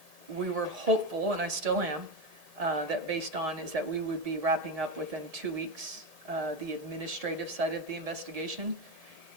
We were hopeful, and I still am, that based on is that we would be wrapping up within 2 weeks, the administrative side of the investigation.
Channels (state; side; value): late; left; 1.7 ms